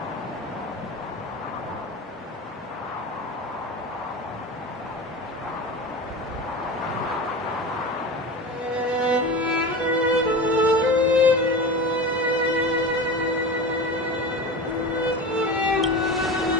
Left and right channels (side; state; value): both; normal; correlation 0.29